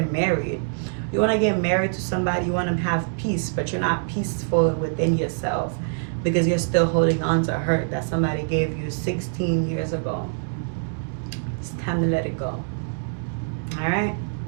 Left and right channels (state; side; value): silent; left; digital silence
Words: married. You want to get married to somebody, you want to have peace, but you're not peaceful within yourself because you're still holding on to hurt that somebody gave you 16 years ago. It's time to let it go. All right?